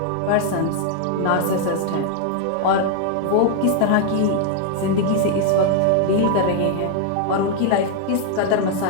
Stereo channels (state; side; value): different; both; correlation 0.00